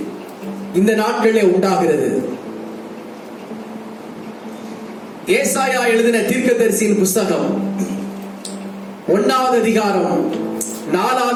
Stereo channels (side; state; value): both; identical; correlation 1.00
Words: இந்த நாட்களிலே உண்டாகிறது. ஏசாயா எழுதின தீர்க்கதரிசியின் புஸ்தகம் 1வது அதிகாரம்